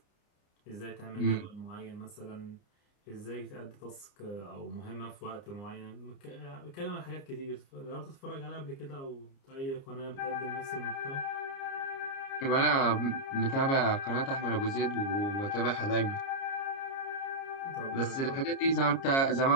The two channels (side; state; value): right; late; 29 ms